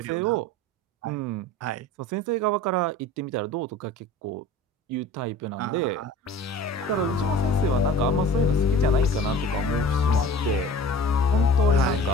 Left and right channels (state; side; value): normal; both; correlation 0.43